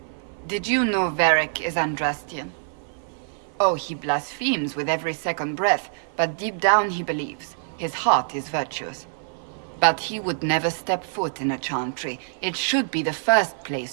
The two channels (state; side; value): silent; left; 55 dB below the other